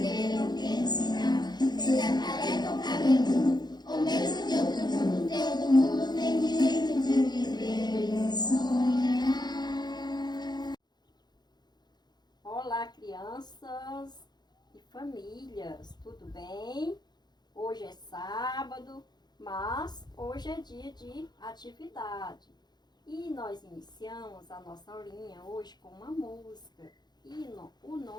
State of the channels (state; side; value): late; right; 0.20 ms